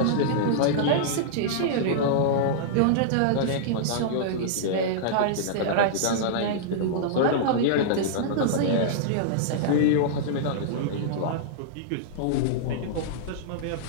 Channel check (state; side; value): different; both; correlation -0.02